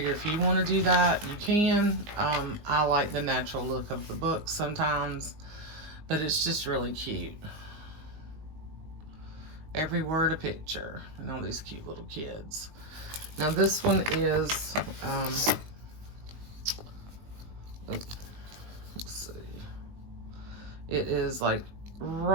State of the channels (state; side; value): late; left; 19 ms